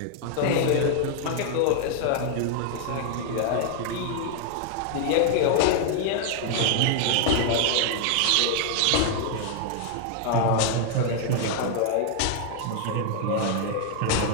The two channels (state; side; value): different; both; correlation 0.00